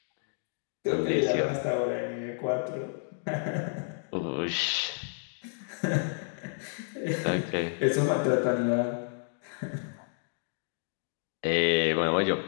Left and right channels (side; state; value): right; silent; digital silence